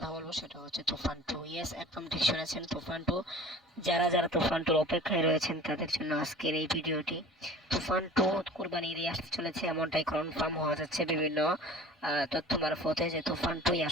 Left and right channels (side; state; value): both; normal; correlation 0.42